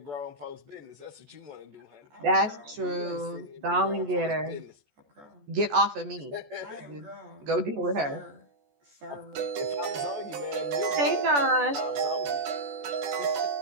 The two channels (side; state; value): left; late; 14 ms